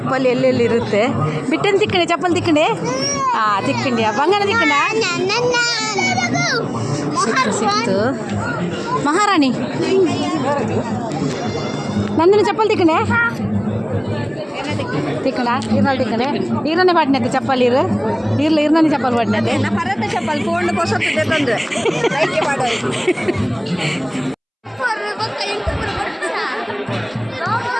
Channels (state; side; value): identical; both; correlation 1.00